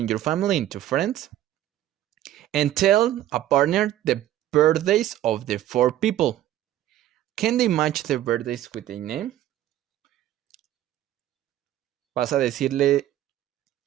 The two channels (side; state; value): left; quieter; 13.0 dB